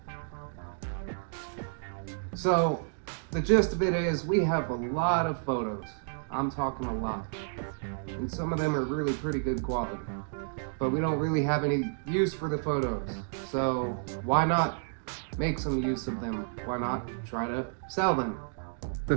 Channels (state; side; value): silent; left; digital silence